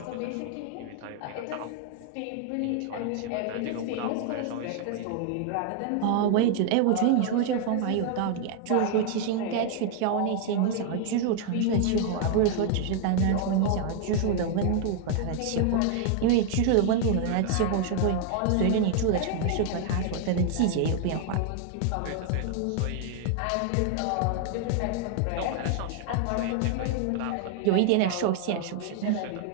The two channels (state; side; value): different; both; correlation 0.00